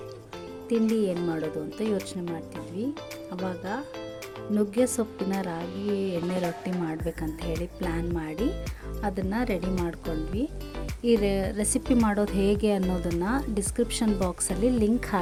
ತಿಂಡಿ ಏನು ಮಾಡೋದು ಅಂತ ಯೋಚನೆ ಮಾಡ್ತಿದ್ವಿ. ಆವಾಗ ನುಗ್ಗೆ ಸೊಪ್ಪಿನ ರಾಗಿ ಎಣ್ಣೆ ರೊಟ್ಟಿ ಮಾಡಬೇಕಂತ ಹೇಳಿ ಪ್ಲ್ಯಾನ್ ಮಾಡಿ ಅದನ್ನು ರೆಡಿ ಮಾಡ್ಕೊಂಡ್ವಿ. ಈ ರೆಸಿಪಿ ಮಾಡೋದು ಹೇಗೆ ಅನ್ನೋದನ್ನು ಡಿಸ್ಕ್ರಿಪ್ಷನ್ ಬಾಕ್ಸಲ್ಲಿ ಲಿಂಕ್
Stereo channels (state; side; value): identical; both; correlation 1.00